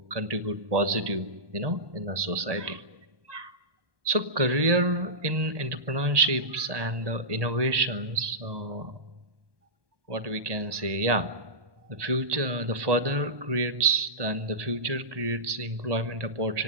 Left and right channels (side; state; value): left; late; 1.2 ms